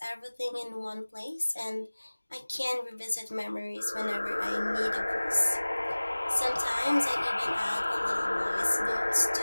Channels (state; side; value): inverted; both; correlation -1.00